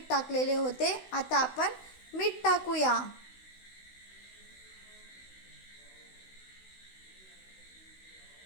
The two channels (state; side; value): late; right; 16 ms